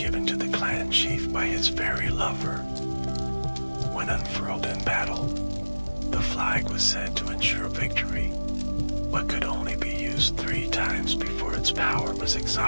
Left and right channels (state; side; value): inverted; both; correlation -1.00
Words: to the clan chief by his fairy lover. When unfurled in battle, the flag was said to ensure victory, but could only be used 3 times before its power was